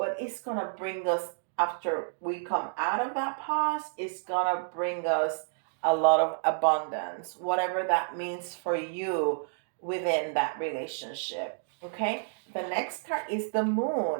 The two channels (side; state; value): left; silent; digital silence